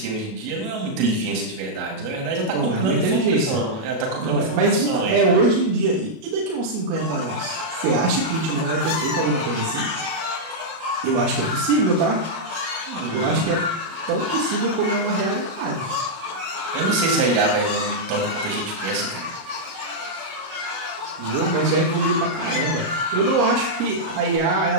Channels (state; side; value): late; left; 37 ms